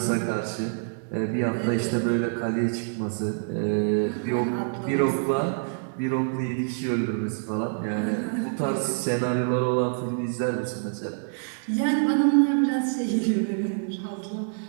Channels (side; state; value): left; silent; digital silence